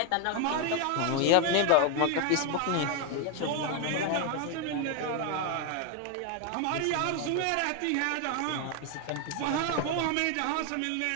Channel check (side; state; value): both; different; correlation 0.01